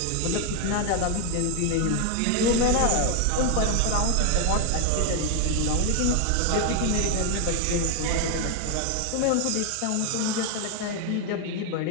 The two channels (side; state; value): both; different; correlation 0.01